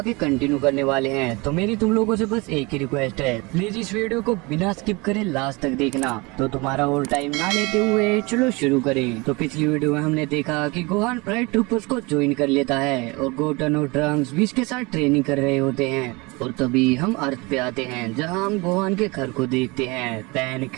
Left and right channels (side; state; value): left; quieter; 25.9 dB